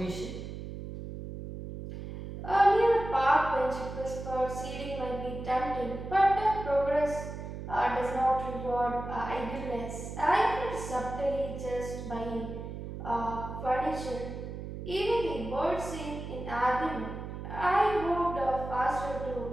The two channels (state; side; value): noise; right; hum, 8 dB below the sound